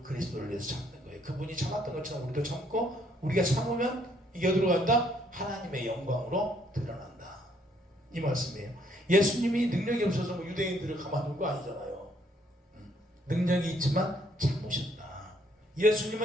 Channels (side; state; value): both; normal; correlation 0.68